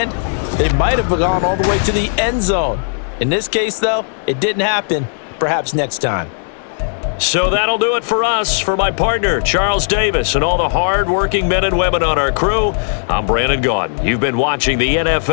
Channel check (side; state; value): right; silent; 67 dB below the other